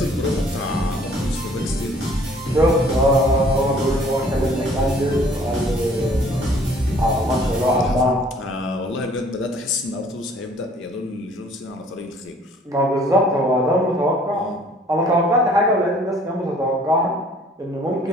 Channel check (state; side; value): normal; both; correlation 0.56